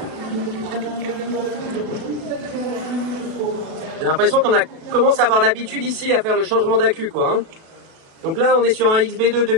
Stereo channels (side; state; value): left; late; 37 ms